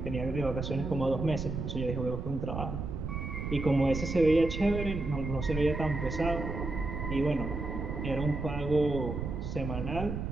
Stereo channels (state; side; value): noise; right; rumble, 4 dB below the sound